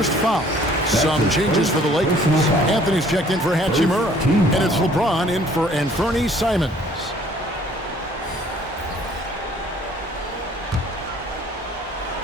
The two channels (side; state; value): both; normal; correlation 0.57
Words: foul. Some changes for the LakErS. Anthony's checked in for Hachimura. And it's LeBron in for Anthony Simons.